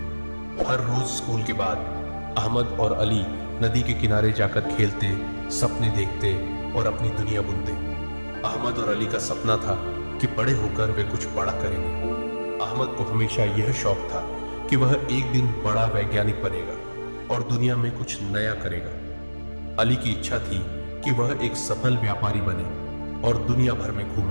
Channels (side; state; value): both; inverted; correlation -1.00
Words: हर रोज स्कूल के बाद अहमद और अली नदी के किनारे जाकर खेलते, सपने देखते और अपनी दुनिया बुनते। अहमद और अली का सपना था कि बड़े होकर वे कुछ बड़ा करेंगे। अहमद को हमेशा यह शौक था कि वह एक दिन बड़ा वैज्ञानिक बनेगा और दुनिया में कुछ नया करेगा। अली की इच्छा थी कि वह एक सफल व्यापारी बने और दुनिया भर में